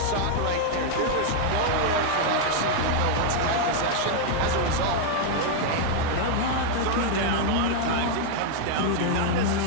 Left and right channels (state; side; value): different; both; correlation 0.00